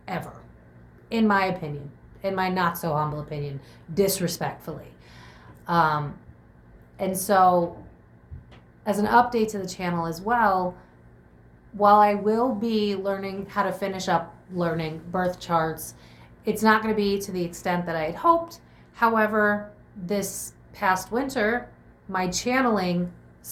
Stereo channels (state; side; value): identical; both; correlation 1.00